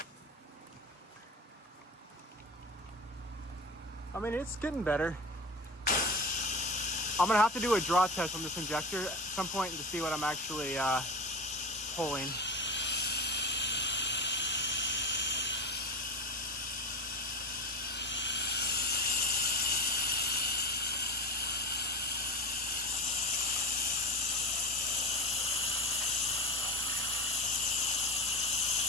I mean, it's getting better. I'm gonna have to do a draw test on this injector at some point to see what I'm actually pulling.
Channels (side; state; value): both; normal; correlation 0.29